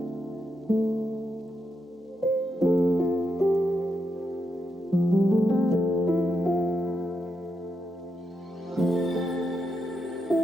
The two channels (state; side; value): normal; both; correlation 0.83